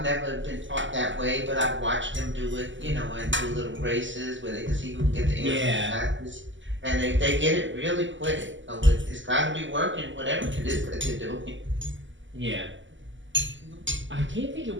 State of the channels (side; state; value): left; late; 0.55 ms